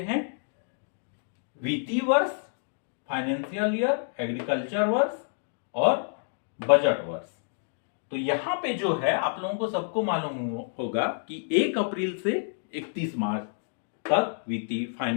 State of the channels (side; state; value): right; silent; digital silence